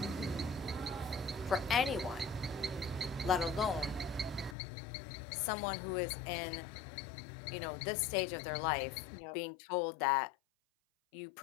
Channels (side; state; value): right; drops out; at 4.5 s